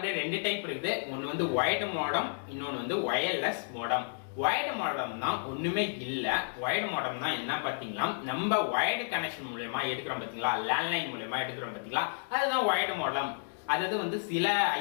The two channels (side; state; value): right; silent; digital silence